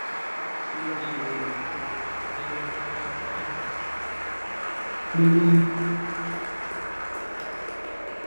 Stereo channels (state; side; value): inverted; both; correlation -1.00